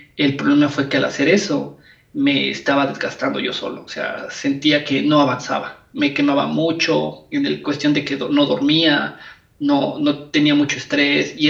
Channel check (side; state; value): both; identical; correlation 1.00